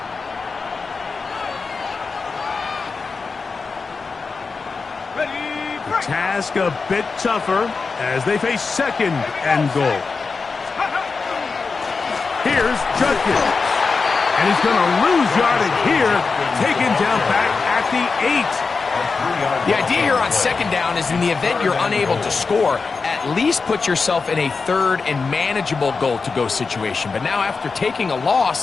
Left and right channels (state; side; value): quieter; right; 4.6 dB